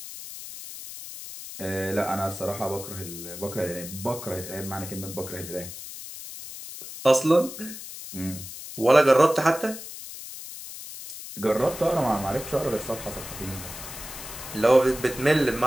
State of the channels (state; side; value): noise; left; hiss, 11 dB below the sound